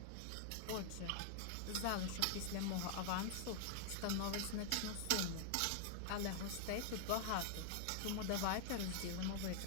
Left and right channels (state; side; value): different; both; correlation 0.00